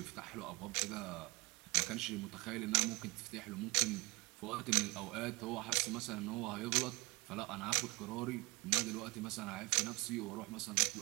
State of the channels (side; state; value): left; quieter; 24.6 dB